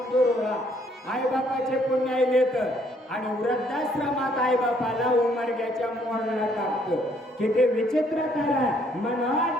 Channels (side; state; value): both; normal; correlation 0.66